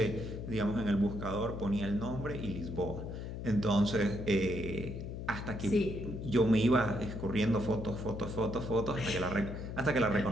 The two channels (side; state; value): left; noise; hum, 7 dB below the sound